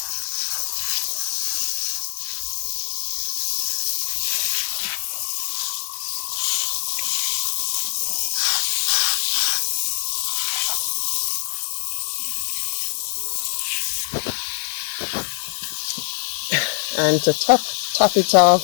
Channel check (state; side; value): silent; right; 63 dB below the other